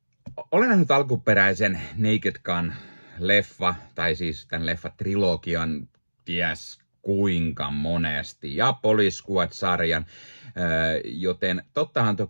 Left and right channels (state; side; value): inverted; both; correlation -1.00